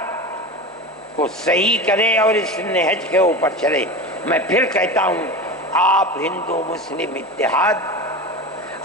کو صحیح کرے اور اس نہج کے اوپر چلے۔ میں پھر کہتا ہوں، آپ ہندو مسلم اتحاد،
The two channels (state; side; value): normal; both; correlation 0.28